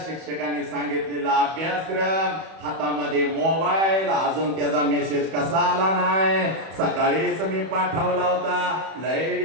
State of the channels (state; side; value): late; left; 31 ms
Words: शिक्षकांनी सांगितलेला अभ्यासक्रम, हातामध्ये मोबाईल, अजून त्याचा मेसेज कसा आला नाही, सकाळीच मी पाठवला होता, लय